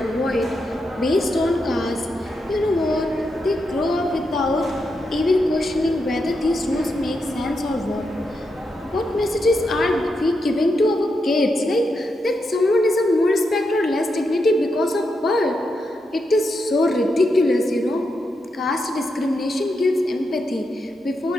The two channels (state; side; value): normal; both; correlation 0.84